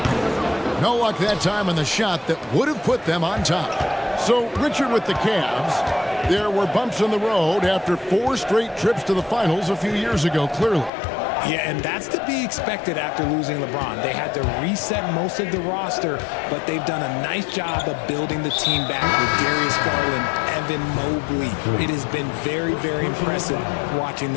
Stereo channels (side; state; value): right; drops out; at 10.9 s